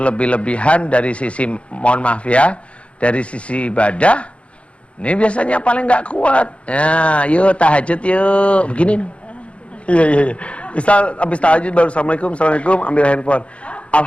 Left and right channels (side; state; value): right; late; 0.061 ms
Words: dari sisi, mohon maaf ya, dari sisi ibadah, ini biasanya paling nggak kuat. Ya, yuk tahajud yuk, begini. Iya. Misal habis tahajud baru assalamualaikum, ambil handphone.